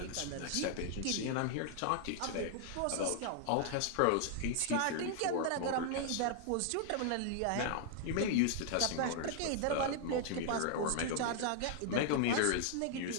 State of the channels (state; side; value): different; both; correlation -0.01